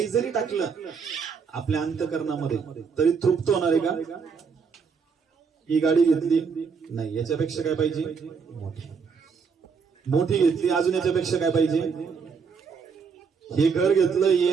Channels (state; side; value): quieter; left; 5.8 dB